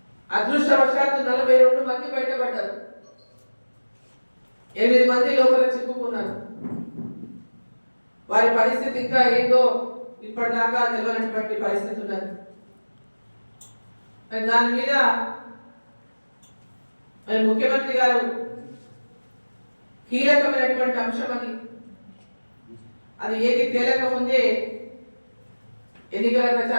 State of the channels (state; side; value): inverted; both; correlation -1.00